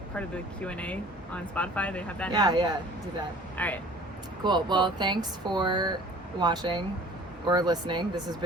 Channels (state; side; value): normal; both; correlation 0.48